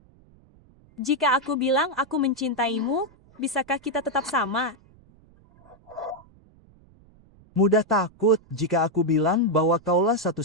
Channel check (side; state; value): right; noise; rumble, 28 dB below the sound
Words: Jika aku bilang aku mencintaimu, bisakah kita tetap sama? Mudah takut jika aku bilang bahwa kaulah